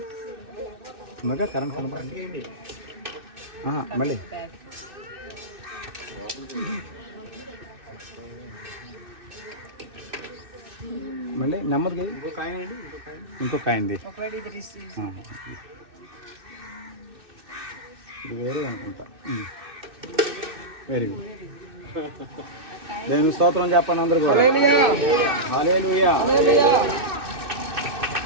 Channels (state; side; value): late; left; 2.6 ms